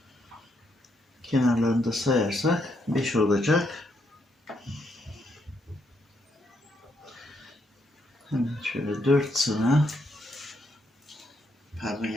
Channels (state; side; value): normal; both; correlation 0.76